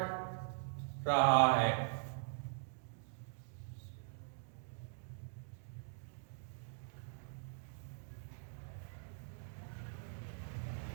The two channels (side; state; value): left; silent; digital silence